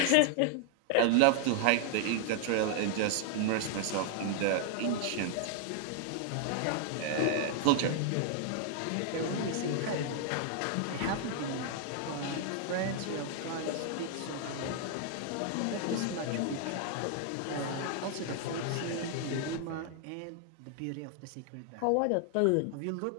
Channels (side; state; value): both; different; correlation 0.00